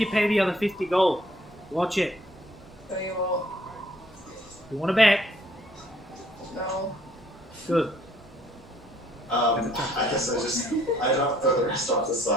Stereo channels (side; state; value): both; normal; correlation 0.63